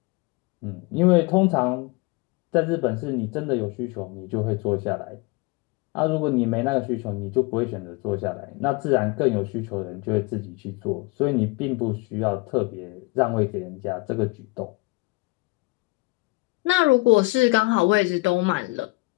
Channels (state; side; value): quieter; right; 24.3 dB